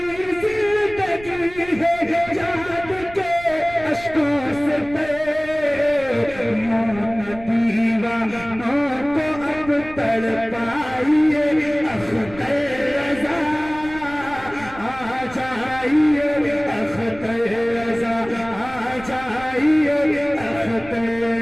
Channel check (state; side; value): noise; right; rumble, 17 dB below the sound